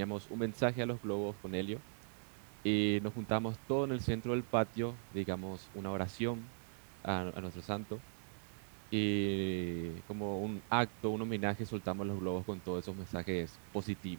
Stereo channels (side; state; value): left; silent; digital silence